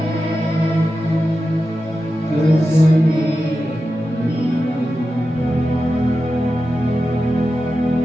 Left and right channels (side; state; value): both; normal; correlation 0.91